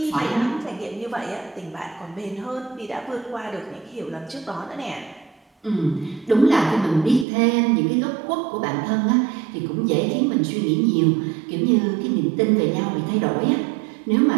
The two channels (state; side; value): drops out; left; at 7.2 s